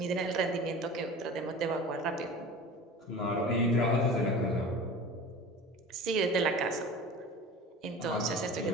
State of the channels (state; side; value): normal; both; correlation 0.36